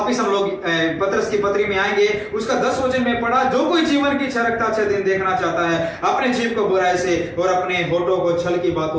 हम लोग पतरस की पत्री में आएंगे। उसका 10 वचन में पढ़ा, जो कोई जीवन की इच्छा रखता अच्छे दिन देखना चाहता है, अपने जीव को बुराई से और अपने होठों को छल की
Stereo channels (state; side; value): identical; both; correlation 1.00